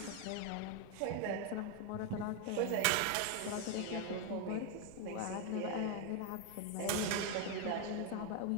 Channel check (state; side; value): different; both; correlation 0.01